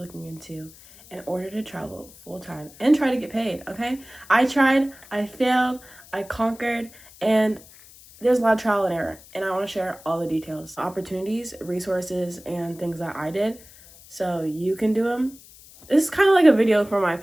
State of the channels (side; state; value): left; noise; hiss, 22 dB below the sound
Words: into in order to travel full-time and try to get paid, okay? I tried, I failed, I conquered, and there's a lot of trial and error, and I want to share all the details, opportunities, resources, and things that I did so you can do them. This is kind of like a video for my